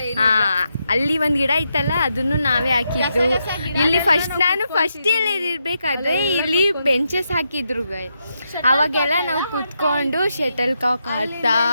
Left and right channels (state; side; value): inverted; both; correlation -0.83